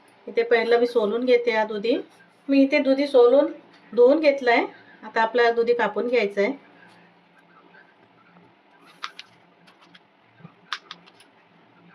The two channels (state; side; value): identical; both; correlation 1.00